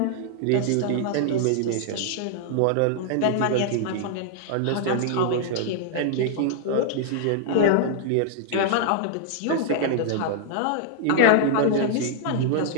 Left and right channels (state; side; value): different; both; correlation -0.01